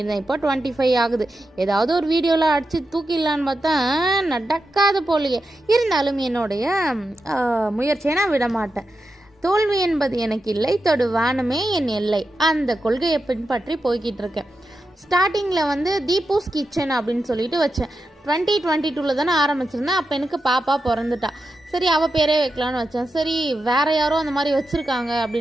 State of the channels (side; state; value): both; normal; correlation 0.89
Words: இப்போ 25 ஆகுது. ஏதாவது ஒரு வீடியோவில் அடித்து தூக்கிடலான்னு பார்த்தா நடக்காத போலையே. இருந்தாலும் என்னுடைய முயற்சியை நான் விட மாட்டேன். தோல்வி என்பது எனக்கு இல்லை, தொடு வானமே என் எல்லை, அந்த கொள்கையை பின்பற்றி போய்கிட்டு இருக்கேன். ஸ்டார்டிங்கில் வந்து தீபூஸ் கிச்சன் அப்படின்னு சொல்லிட்டு வச்சேன். 2022 தானே ஆரம்பிச்சிருந்தேன். அப்போ எனக்கு பாப்பா பிறந்துட்டா. சரி, அவள் பேரே வைக்கலான்னு வச்சேன். சரி, வேறு யாரோ அந்த மாதிரி வச்சுருக்காங்க